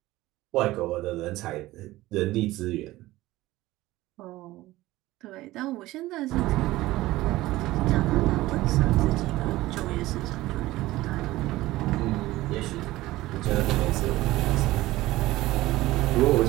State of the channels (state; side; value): quieter; left; 17.4 dB